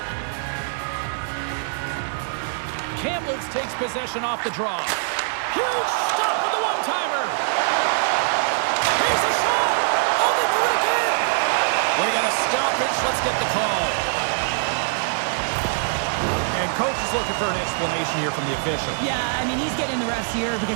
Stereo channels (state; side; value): silent; left; digital silence